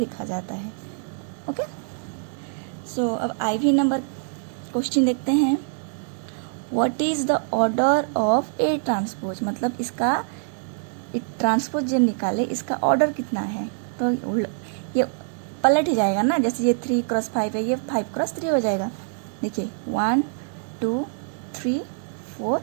जाता है। ओके, सो अब IV नंबर क्वेश्चन देखते हैं। What is the order of A transpose, मतलब इसका ट्रांसपोज जब निकाले इसका ऑर्डर कितना है। तो ये पलट ही जाएगा ना, जैसे ये 3 क्रॉस 5 है, ये 5 क्रॉस 3 हो जाएगा। देखिए 1 2 3 4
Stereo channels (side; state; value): left; silent; digital silence